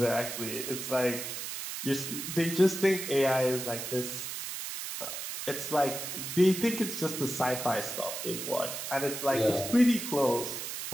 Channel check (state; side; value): noise; right; hiss, 6 dB below the sound